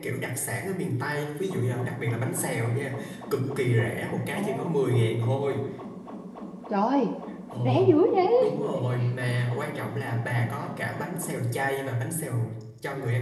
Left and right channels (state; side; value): identical; both; correlation 1.00